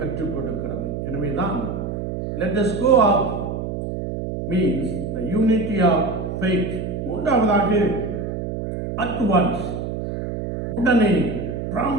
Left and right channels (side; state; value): right; noise; hum, 5 dB below the sound